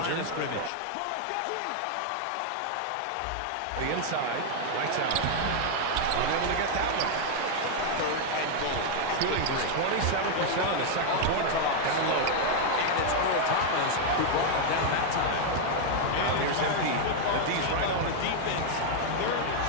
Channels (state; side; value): different; both; correlation 0.00